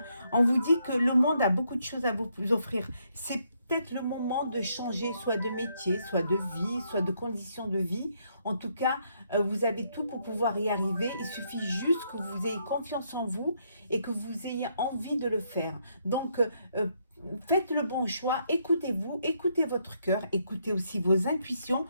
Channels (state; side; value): inverted; both; correlation -0.74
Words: On vous dit que le monde a beaucoup de choses à vous offrir. C'est peut-être le moment de changer soit de métier, soit de vie, soit de conditions de vie. En tout cas, vous avez tout pour pouvoir y arriver. Il suffit juste que vous ayez confiance en vous et que vous ayez envie de le faire. Donc, faites le bon choix, écoutez-vous, écoutez votre cœur, écoutez aussi vos intuitions.